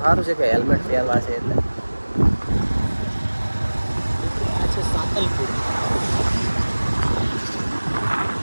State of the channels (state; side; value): inverted; both; correlation -1.00